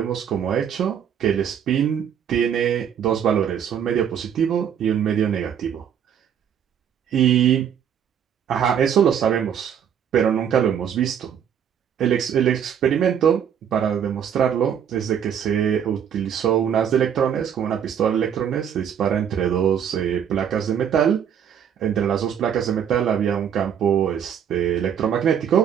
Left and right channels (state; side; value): quieter; left; 8.6 dB